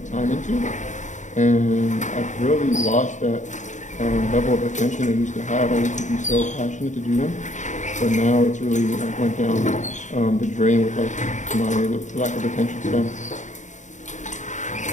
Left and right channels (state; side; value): late; right; 0.35 ms